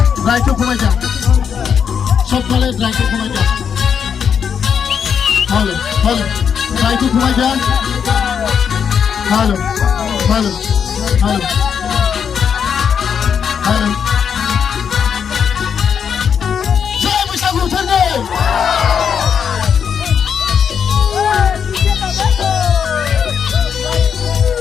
try to come again. Sokale try to come again. Hello, try to come again. Hello. Jai Bishagu Thane.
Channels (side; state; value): right; quieter; 7.3 dB